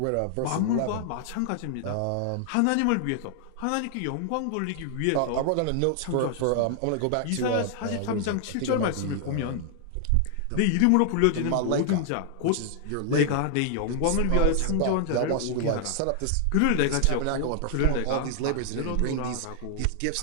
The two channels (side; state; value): both; different; correlation 0.00